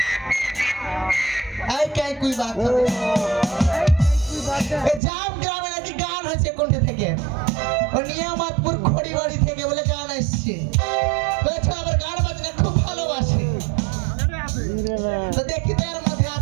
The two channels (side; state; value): left; drops out; at 5.0 s